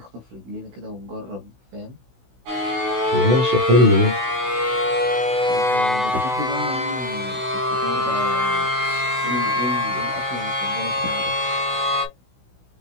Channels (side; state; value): left; late; 16 ms